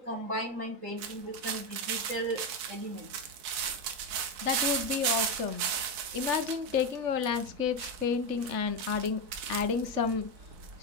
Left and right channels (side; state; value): left; late; 4.0 ms